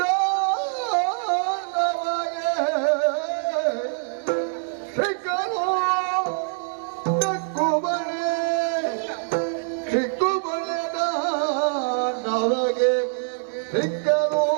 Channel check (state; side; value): silent; left; digital silence